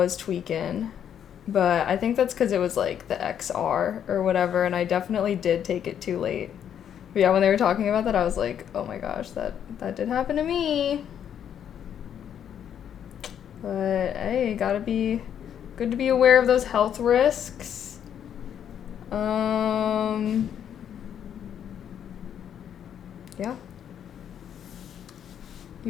tweaking. But I think that's because it was, like, the XR or whatever, and I definitely did take it too late. But yeah, when they were talking about that, I was like, oh my gosh, that did happen to me. But, hey, gotta be good to be aware of those health risks. Yeah.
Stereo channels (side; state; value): right; quieter; 9.1 dB